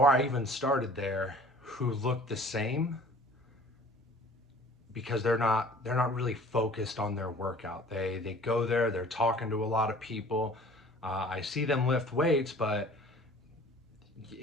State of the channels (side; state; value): both; normal; correlation 0.49